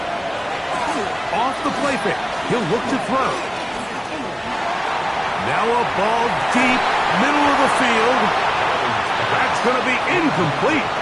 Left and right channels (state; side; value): identical; both; correlation 1.00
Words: Off the play fake. He'll look to throw. Now a ball deep, middle of the field. That's going to be incomplete.